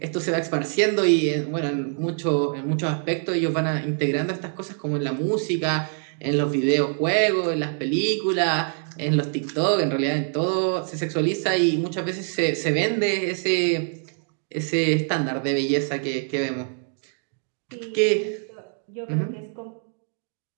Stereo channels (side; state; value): left; silent; 56 dB below the other